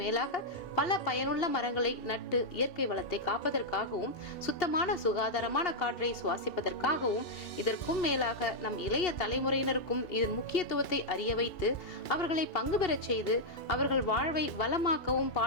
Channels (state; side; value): late; right; 2.7 ms